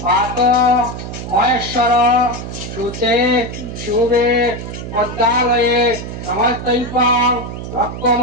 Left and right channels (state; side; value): noise; right; hum, 8 dB below the sound